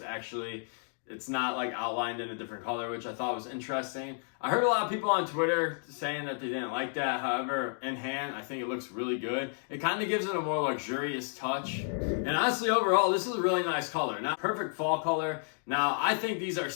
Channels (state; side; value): silent; right; 57 dB below the other